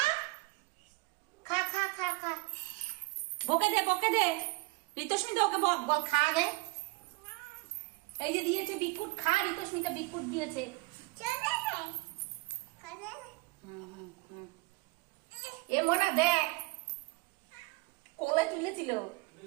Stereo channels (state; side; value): quieter; left; 25.1 dB